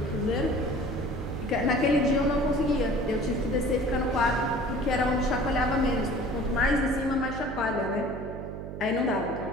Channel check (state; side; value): noise; right; hum, 9 dB below the sound